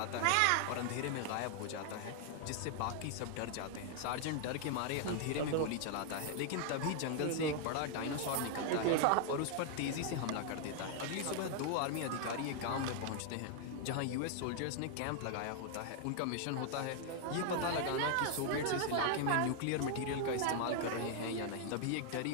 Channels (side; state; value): both; different; correlation 0.00